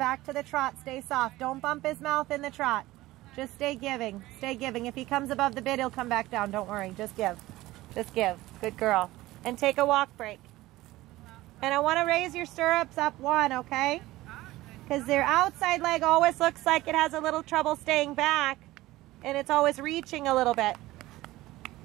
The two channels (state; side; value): quieter; left; 17.6 dB